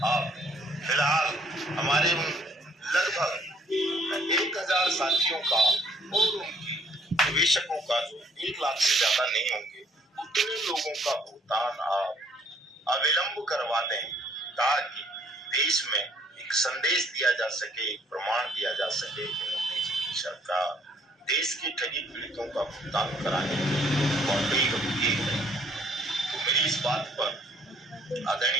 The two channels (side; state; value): both; normal; correlation 0.63